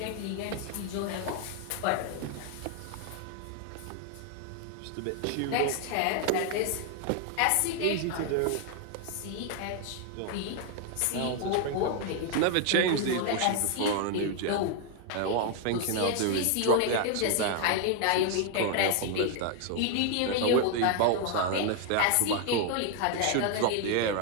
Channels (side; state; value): both; different; correlation 0.00